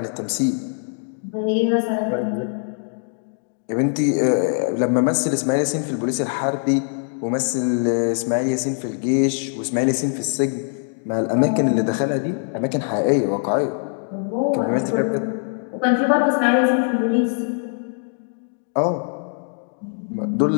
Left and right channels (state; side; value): silent; right; 63 dB below the other